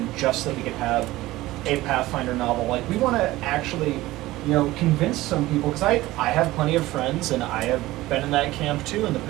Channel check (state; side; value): quieter; left; 17.6 dB